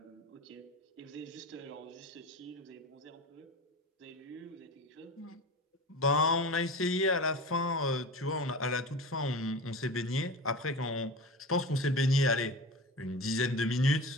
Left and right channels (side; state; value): both; normal; correlation 0.31